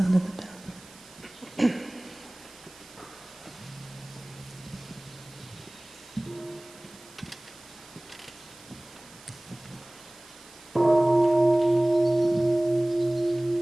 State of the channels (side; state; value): right; noise; hiss, 22 dB below the sound